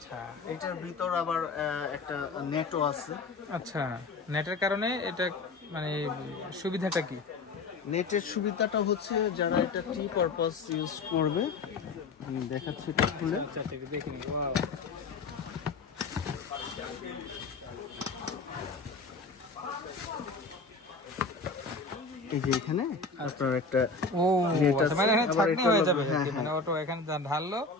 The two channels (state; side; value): quieter; right; 3.9 dB